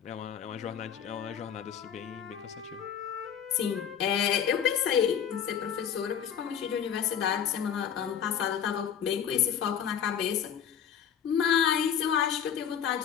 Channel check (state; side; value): quieter; right; 8.5 dB